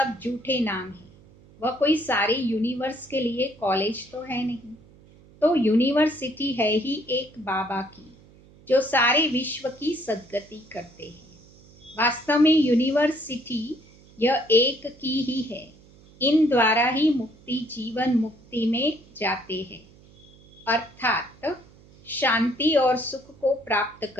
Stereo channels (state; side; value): noise; right; hum, 25 dB below the sound